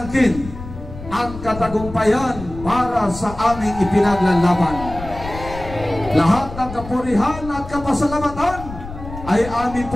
ang katagumpayan para sa aming ipinaglalaban. Lahat ng kapurihan at kapasalamatan ay amin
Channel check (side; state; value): left; noise; rumble, 12 dB below the sound